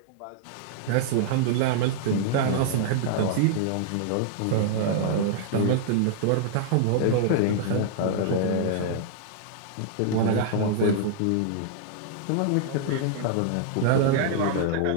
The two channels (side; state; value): both; different; correlation -0.01